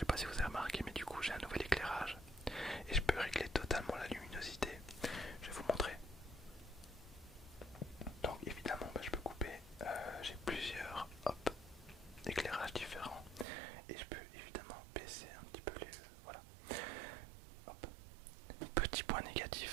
pas si vous avez remarqué, mais du coup j'ai un nouvel éclairage et je peux régler totalement la luminosité. Je vais vous montrer. Donc évidemment je peux couper, j'ai plusieurs éclairages différents et je peux évidemment baisser un petit peu les... voilà. Hop. Petit point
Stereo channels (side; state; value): left; drops out; at 13.5 s